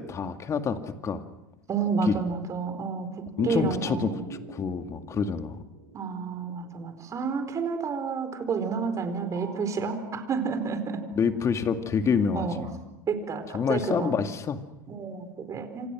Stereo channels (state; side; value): normal; both; correlation 0.53